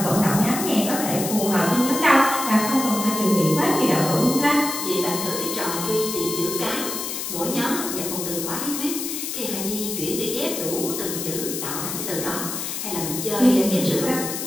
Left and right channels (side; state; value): left; noise; hiss, 5 dB below the sound